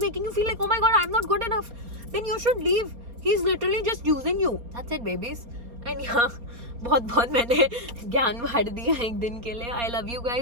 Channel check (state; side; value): late; left; 4.3 ms